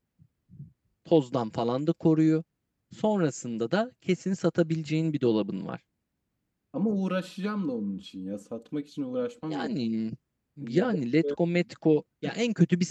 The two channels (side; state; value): both; identical; correlation 1.00